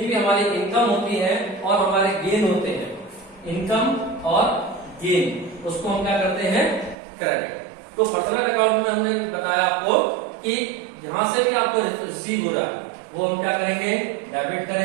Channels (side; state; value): left; drops out; at 7.0 s